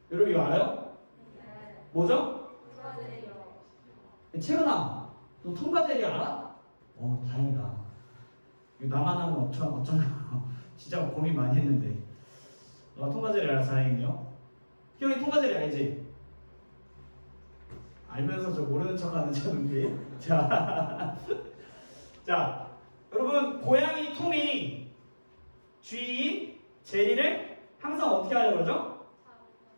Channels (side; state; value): both; inverted; correlation -1.00